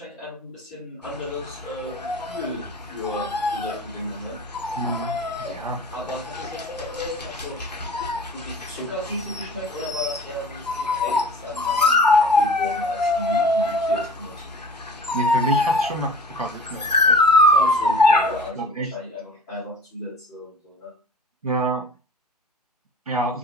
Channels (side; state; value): both; normal; correlation 0.42